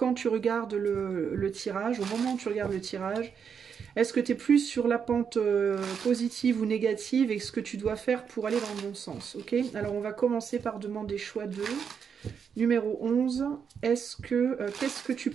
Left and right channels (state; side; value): quieter; left; 6.9 dB